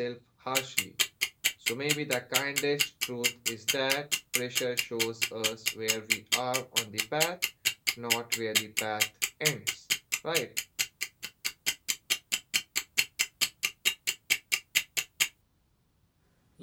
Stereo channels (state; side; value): identical; both; correlation 1.00